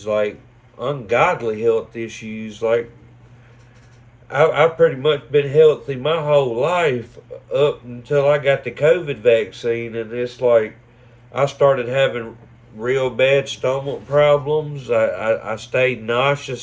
like ungodly health issues. Like I've pretty much been healthy my whole life up until I got the COVID vaccine, and it's like I started having real bad stomach problems. I stayed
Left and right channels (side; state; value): both; identical; correlation 1.00